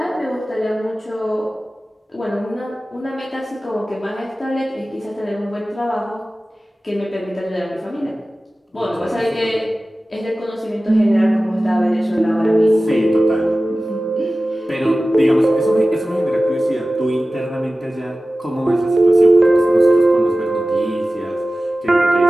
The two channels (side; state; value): both; normal; correlation 0.96